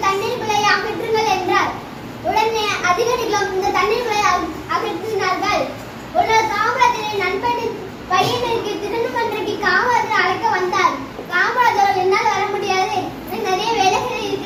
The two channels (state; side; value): identical; both; correlation 1.00